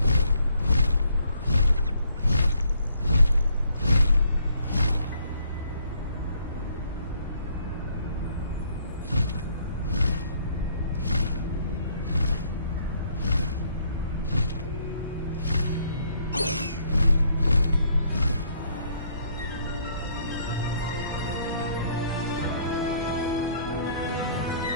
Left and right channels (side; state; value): both; inverted; correlation -0.66